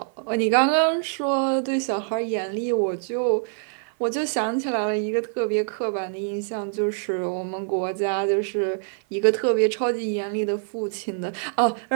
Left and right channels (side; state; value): left; silent; 56 dB below the other